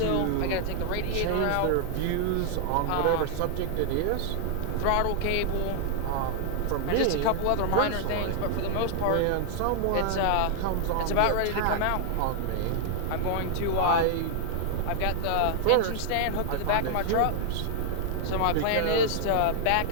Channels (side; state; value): both; different; correlation -0.01